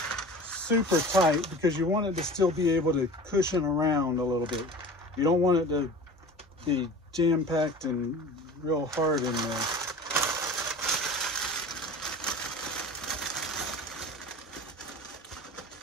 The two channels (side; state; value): both; normal; correlation 0.37